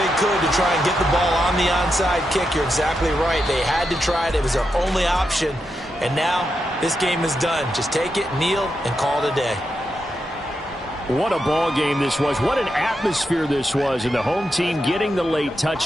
could to try and get the ball on the onside kick. You're exactly right. They had to try it. It was their only option. And now this game is done. Just take it, kneel, and call it a day. What a ball game this was. What an atmosphere this was. And the home team getting the late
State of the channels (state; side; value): normal; both; correlation 0.86